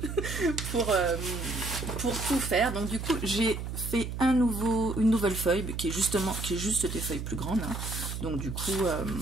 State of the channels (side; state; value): right; noise; hum, 5 dB below the sound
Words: pour tout faire. Donc du coup, j'ai fait une nouvelle feuille qui est juste des feuilles plus grandes. Hein. Donc du coup,